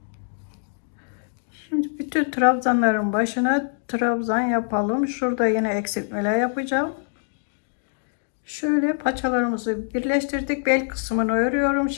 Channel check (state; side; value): silent; right; digital silence